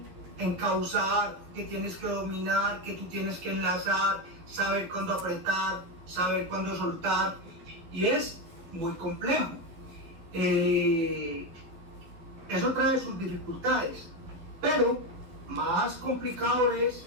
encauzar, que tienes que dominar, que tú tienes que enlazar, saber cuándo apretar, saber cuándo soltar, y es muy complejo. Eso trae sus dificultades, pero más complicado es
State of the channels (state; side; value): late; left; 11 ms